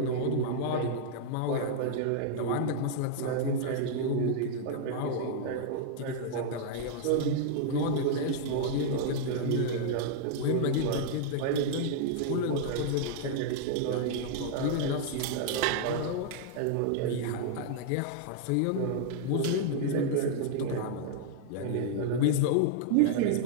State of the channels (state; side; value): different; both; correlation -0.01